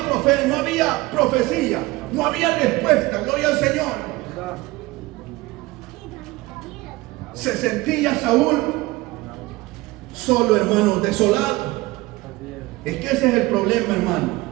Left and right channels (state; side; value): quieter; left; 20.4 dB